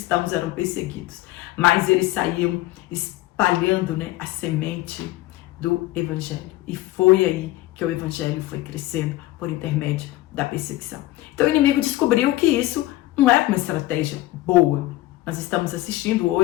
eram perseguidos, mais eles saíam espalhando, né, a semente do evangelho. E foi aí que o evangelho foi crescendo por intermédio da perseguição. Então o inimigo descobriu que isso não é uma estratégia boa. Nós estamos assistindo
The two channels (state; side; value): quieter; right; 16.9 dB